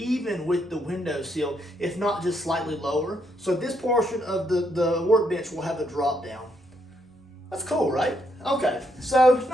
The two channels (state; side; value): normal; both; correlation 0.75